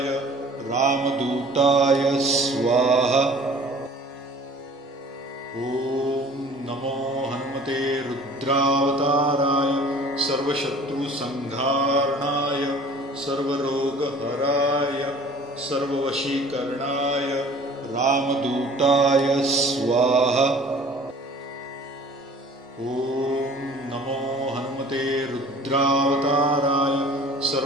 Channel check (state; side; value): normal; both; correlation 0.48